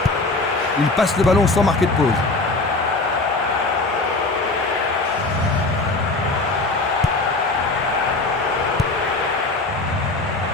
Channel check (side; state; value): right; quieter; 3.2 dB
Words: Il passe le ballon sans marquer de pause.